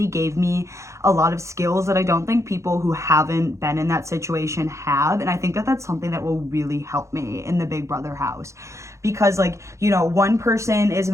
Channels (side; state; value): left; late; 0.14 ms